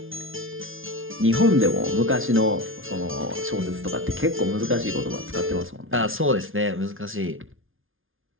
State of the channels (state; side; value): late; left; 0.59 ms